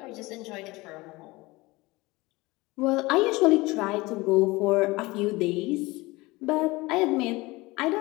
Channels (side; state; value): right; quieter; 21.9 dB